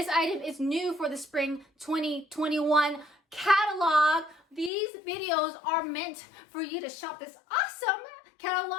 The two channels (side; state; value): right; drops out; at 4.7 s